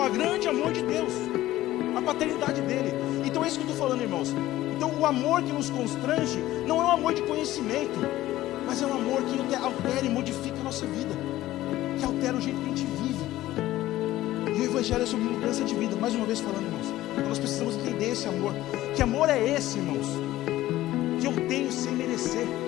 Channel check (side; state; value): right; quieter; 15.4 dB